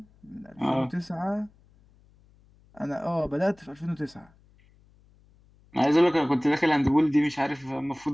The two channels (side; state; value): left; noise; hum, 30 dB below the sound